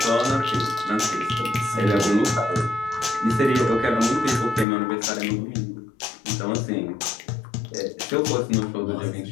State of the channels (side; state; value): right; drops out; at 4.7 s